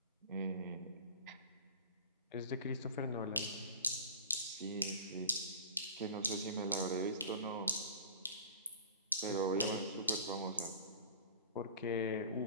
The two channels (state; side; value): inverted; both; correlation -0.38